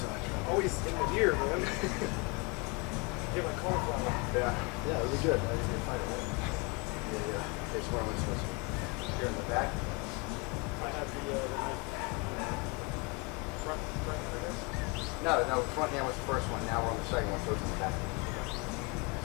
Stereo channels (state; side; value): quieter; right; 29.4 dB